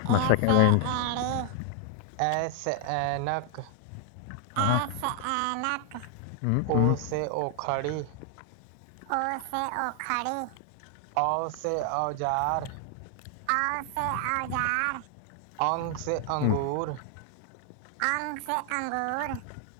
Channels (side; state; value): both; different; correlation 0.00